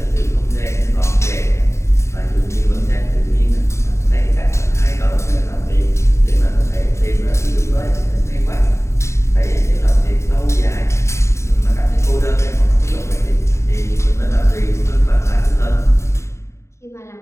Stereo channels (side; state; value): right; late; 0.14 ms